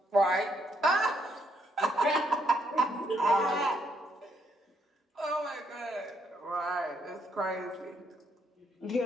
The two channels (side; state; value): both; normal; correlation 0.73